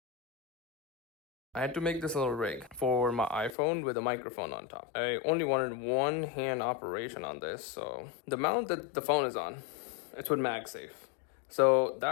I had to make this little rig for my iPhone with a microphone on top. I only wanted one hand operation on this, so the mount that the phone is on, it's with MagSafe. So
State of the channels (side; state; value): right; drops out; at 3.6 s